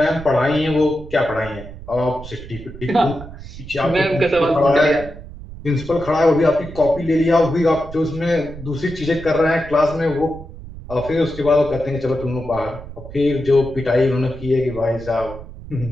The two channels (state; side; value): noise; right; rumble, 14 dB below the sound